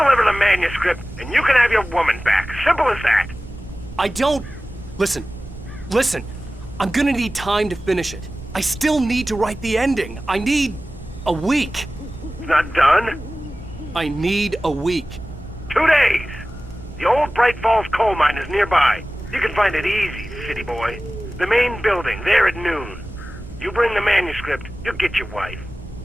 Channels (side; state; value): both; normal; correlation 0.96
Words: the manuscript, and you can have your woman back. Simple as that. I don't... Listen. I'm gonna need time to finish it. I still need to write the ending. I need a week. It's not done? I need a week. 2 days. The old Bright Falls coal mine is nearby. You can find it easy, city boy. The main building, there at noon. You bring the manuscript, you'll get your wife.